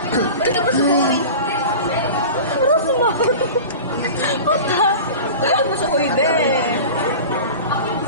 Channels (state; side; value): inverted; both; correlation -0.34